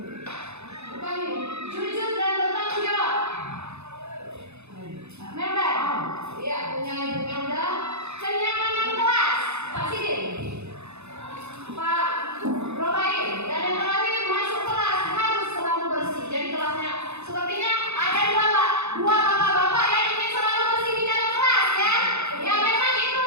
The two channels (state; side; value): late; left; 0.81 ms